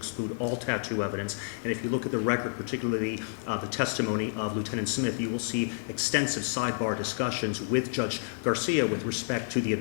all tattoo evidence. And if you look at the record, particularly the testimony of Lieutenant Smith, you will see extensive sidebar discussions with Judge Garcia with respect to the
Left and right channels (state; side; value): silent; right; 58 dB below the other